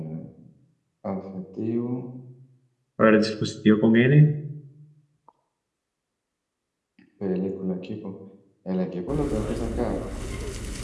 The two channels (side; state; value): both; identical; correlation 1.00